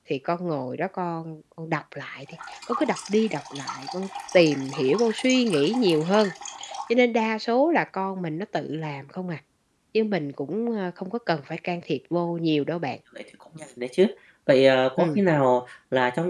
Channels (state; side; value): identical; both; correlation 1.00